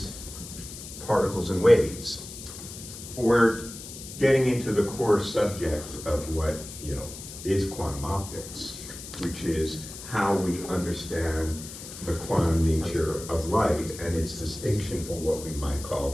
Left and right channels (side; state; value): left; noise; hiss, 12 dB below the sound